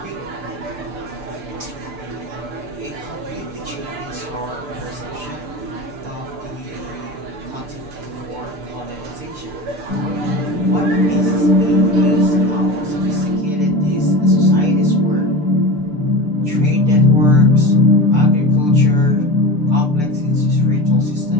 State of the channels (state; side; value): late; left; 6.8 ms